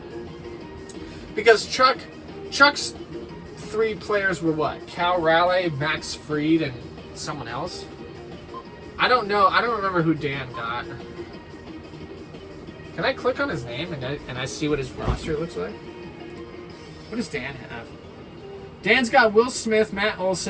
because Chuck's 3 players were what? Cal Raleigh, Max Fried, and someone else? I don't know. I don't remember who Dan got. Can I click on his name and I see what his roster looks like? What does Dan have? Dan's got Will Smith, Matt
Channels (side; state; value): both; identical; correlation 1.00